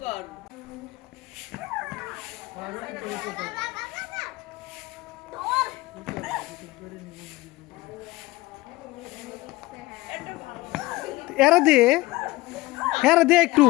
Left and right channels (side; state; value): right; quieter; 19.9 dB